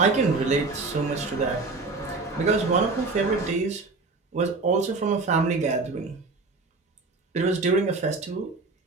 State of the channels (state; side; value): quieter; left; 3.7 dB